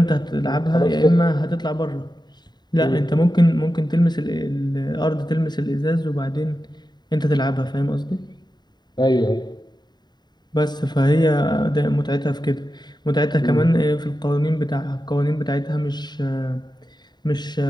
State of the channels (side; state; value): right; late; 0.21 ms